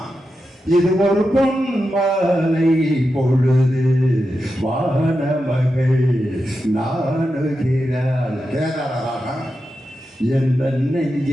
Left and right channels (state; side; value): normal; both; correlation 0.89